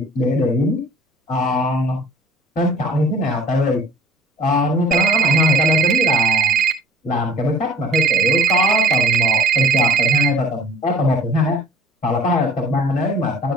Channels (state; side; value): normal; both; correlation 0.50